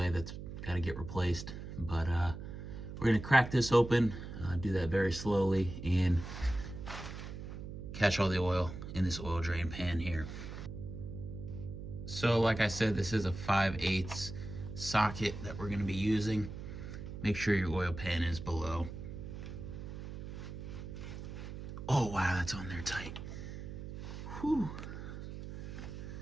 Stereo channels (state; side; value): noise; right; hum, 9 dB below the sound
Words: that's got to get replaced. But we're going to crack this open, do that very slowly, and catch all the oil in this oil drain pan here. So like I said, this is a 5/8 socket that we're going to be using. Make sure your oil pan is below. Oh wow, that's on there tight. Whew.